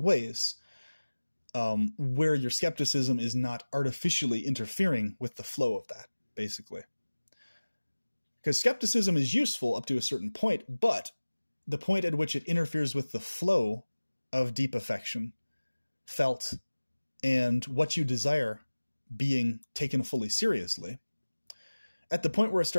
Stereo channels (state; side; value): inverted; both; correlation -1.00